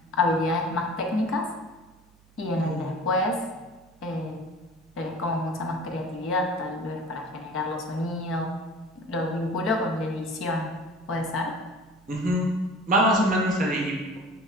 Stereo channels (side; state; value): right; noise; hum, 29 dB below the sound